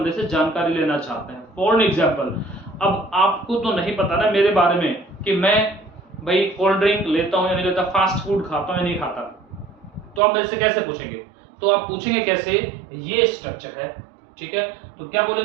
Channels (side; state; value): left; drops out; at 10.2 s